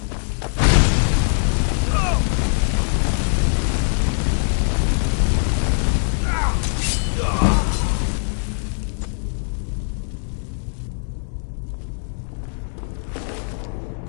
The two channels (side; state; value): right; silent; digital silence